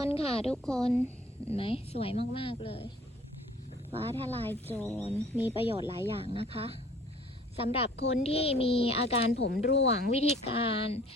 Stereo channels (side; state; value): both; normal; correlation 0.53